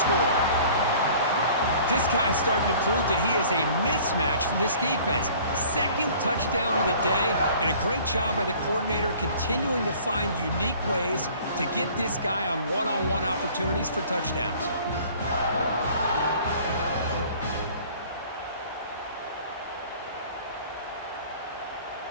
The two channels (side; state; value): both; inverted; correlation -0.50